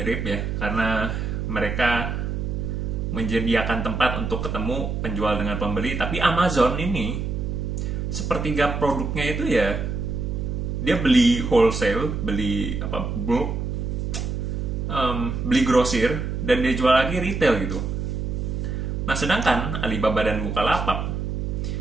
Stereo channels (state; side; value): noise; right; hum, 2 dB below the sound